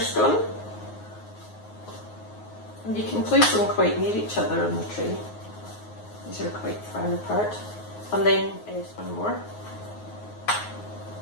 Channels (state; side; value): late; right; 9.5 ms